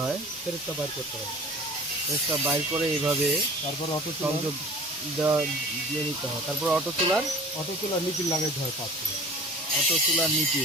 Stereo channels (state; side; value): normal; both; correlation 0.42